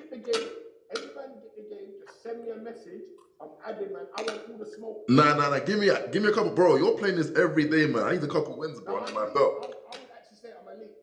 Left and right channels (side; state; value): both; identical; correlation 1.00